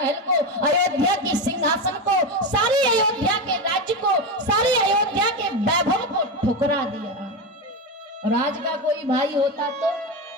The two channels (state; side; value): normal; both; correlation 0.15